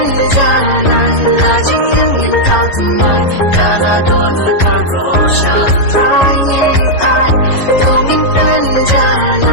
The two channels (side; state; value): right; late; 11 ms